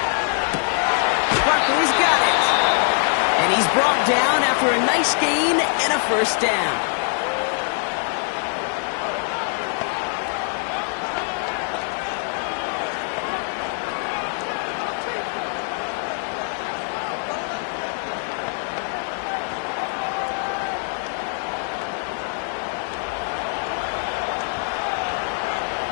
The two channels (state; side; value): silent; right; 58 dB below the other